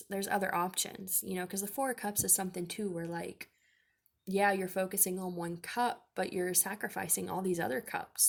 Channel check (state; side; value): identical; both; correlation 1.00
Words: other options, you know, because the Four of Cups is something too where, like, yeah, you're focusing on one cup, but you're sacrificing all these other